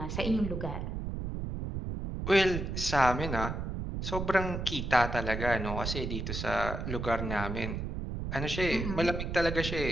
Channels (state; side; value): noise; right; rumble, 4 dB below the sound